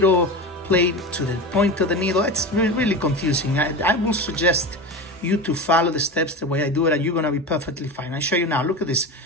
plate to the point of the needle. It's really confusing. I will suggest you to follow the steps the way I do it, and you're gonna be perfectly fine. I'll show you now. Look at this.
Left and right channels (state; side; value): normal; both; correlation 0.26